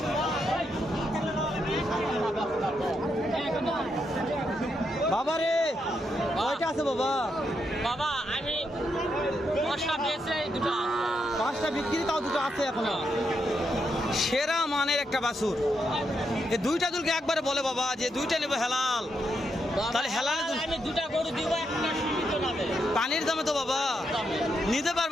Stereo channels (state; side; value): normal; both; correlation 0.81